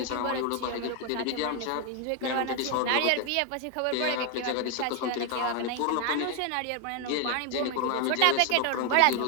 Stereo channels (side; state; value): both; different; correlation 0.01